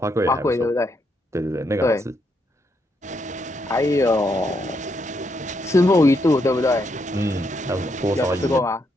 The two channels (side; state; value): both; normal; correlation 0.78